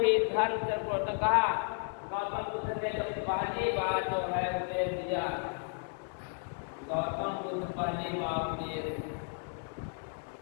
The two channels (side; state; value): right; silent; 55 dB below the other